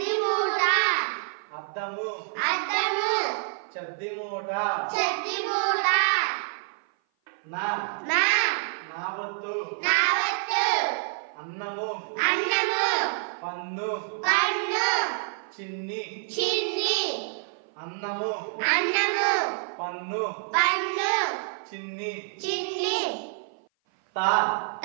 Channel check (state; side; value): silent; left; 56 dB below the other